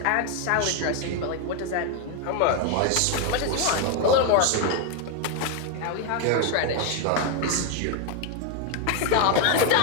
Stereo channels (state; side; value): different; both; correlation 0.01